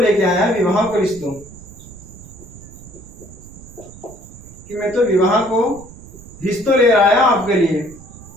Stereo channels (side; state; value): right; noise; rumble, 18 dB below the sound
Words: आया, विवाह को रिश्तो, कि मैं तो विवाह को रिश्तो ले आया आपके लिए।